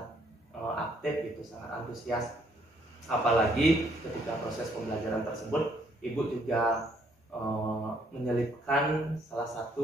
aktif gitu, sangat antusias. Apalagi ketika proses pembelajaran tersebut, Ibu juga menyelipkan salah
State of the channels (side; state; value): both; normal; correlation 0.68